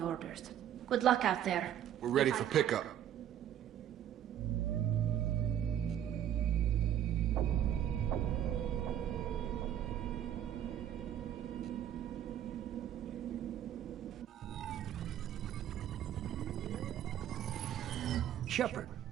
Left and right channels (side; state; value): left; quieter; 10.6 dB